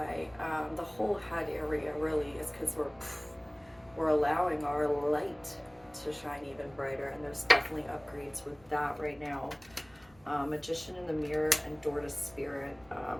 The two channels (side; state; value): right; noise; rumble, 28 dB below the sound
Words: the whole head area really is, because we're allowing our light to shine even brighter, and there's definitely upgrades with that right now. Magician in the mirror and door to spirit.